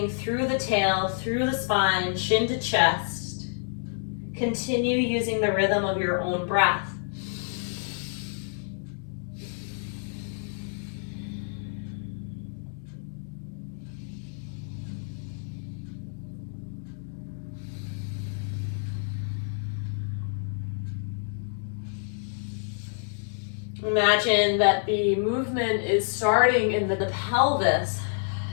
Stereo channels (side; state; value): right; silent; digital silence